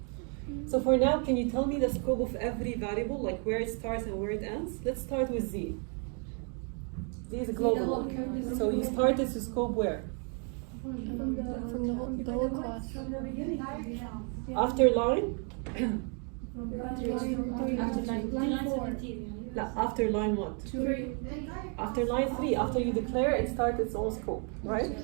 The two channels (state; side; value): quieter; left; 39.5 dB